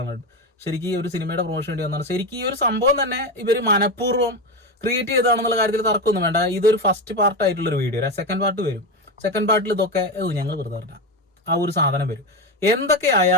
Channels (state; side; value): normal; both; correlation 0.16